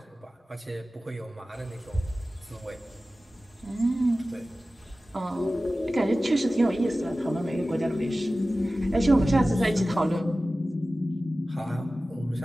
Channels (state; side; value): normal; both; correlation 0.96